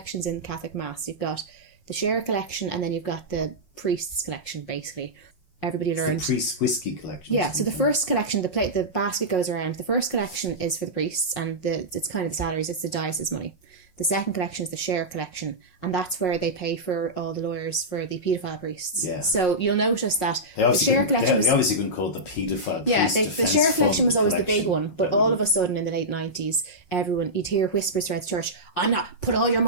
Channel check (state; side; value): late; right; 5.5 ms